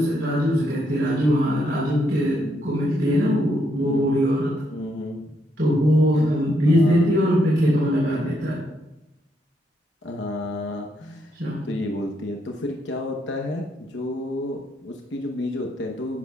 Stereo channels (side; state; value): both; normal; correlation 0.76